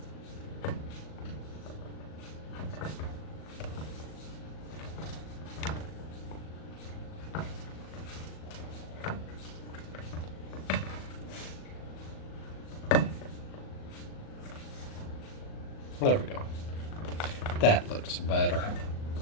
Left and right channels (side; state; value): right; late; 38 ms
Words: There we go. That looks better.